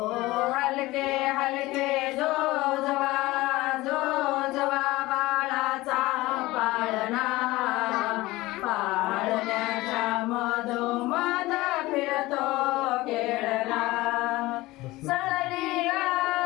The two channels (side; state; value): right; quieter; 19.3 dB